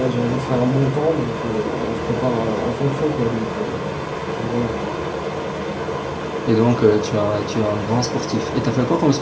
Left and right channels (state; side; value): identical; both; correlation 1.00